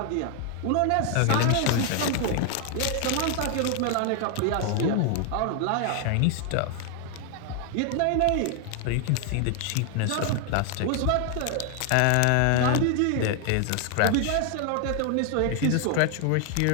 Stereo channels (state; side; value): different; both; correlation 0.00